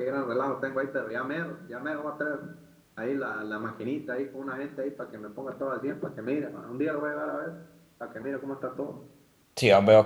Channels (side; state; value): both; identical; correlation 1.00